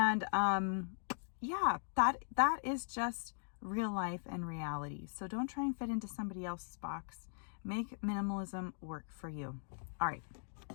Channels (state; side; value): silent; right; digital silence